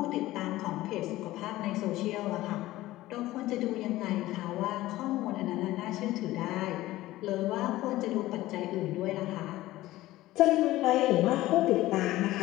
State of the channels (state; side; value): quieter; right; 16.7 dB